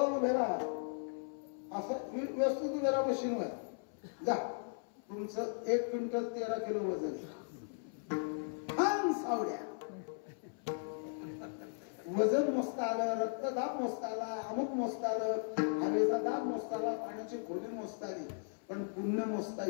उभे राहा. असं व्यवस्थित उभे राहा मशीनवर. जा तुमचं 1 क्विंटल 13 किलो वजन. सावड्या वजन मोजता आलं, रक्तदाब मोजता आला, अमुक मोजता आलं, हवेचा दाब मोजता आला, पाण्याची खोली मोजता आली, पण पुण्य मोजता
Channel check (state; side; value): silent; right; 53 dB below the other